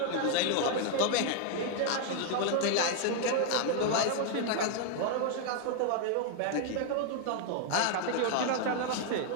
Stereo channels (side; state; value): both; different; correlation 0.00